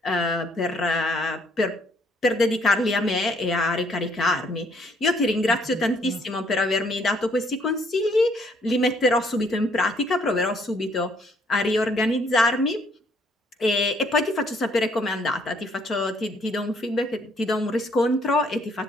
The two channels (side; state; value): both; normal; correlation 0.66